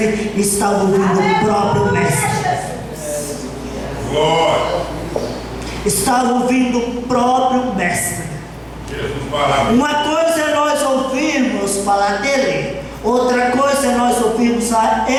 e estava ouvindo o próprio Mestre. Glória. Estava ouvindo o próprio Mestre. Uma coisa é nós ouvirmos falar dele, outra coisa é nós ouvirmos a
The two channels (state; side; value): identical; both; correlation 1.00